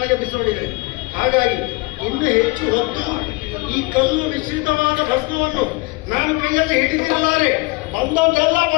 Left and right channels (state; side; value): quieter; right; 25.2 dB